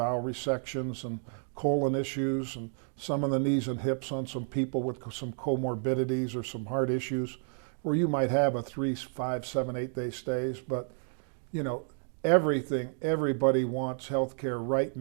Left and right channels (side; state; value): left; silent; 57 dB below the other